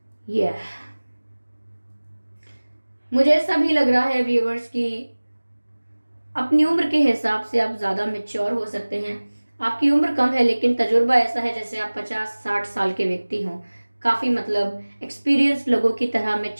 मुझे ऐसा भी लग रहा है व्यूअर्स कि अपनी उम्र के हिसाब से आप ज़्यादा मेच्योर हो सकते हैं। आपकी उम्र कम है लेकिन तजुर्बा ऐसा है जैसे आप 50-60 साल के व्यक्ति हों। काफ़ी मतलब एक्सपीरियंस लोगों की तरह,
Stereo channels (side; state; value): both; inverted; correlation -1.00